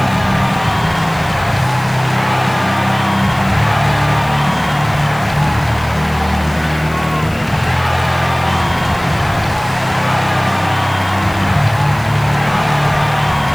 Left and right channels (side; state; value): left; noise; hiss, 21 dB below the sound